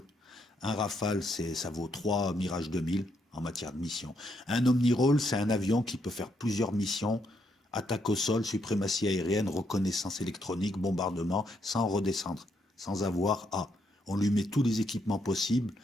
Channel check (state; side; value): normal; both; correlation 0.76